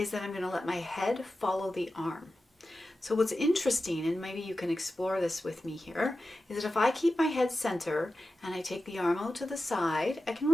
that I'm going to let my head follow the arm. So what's interesting, and maybe you can explore this with me here, is that if I keep my head center and I take the arm out to the side, I can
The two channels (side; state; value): both; normal; correlation 0.93